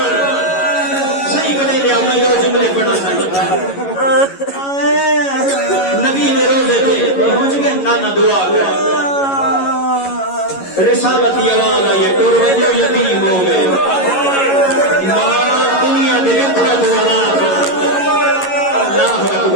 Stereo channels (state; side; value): late; right; 11 ms